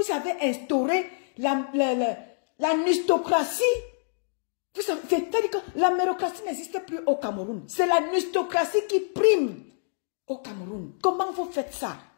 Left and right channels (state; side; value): silent; right; digital silence